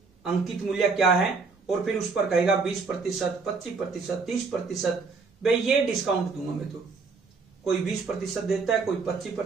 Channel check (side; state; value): left; quieter; 4.5 dB